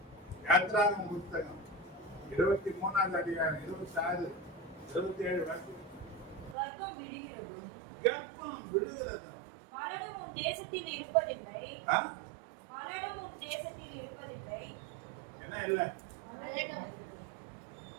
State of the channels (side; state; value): left; drops out; at 6.6 s